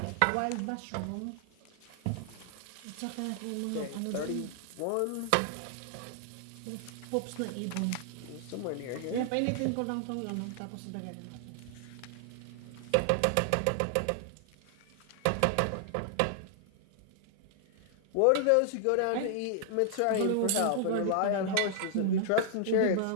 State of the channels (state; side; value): different; both; correlation 0.00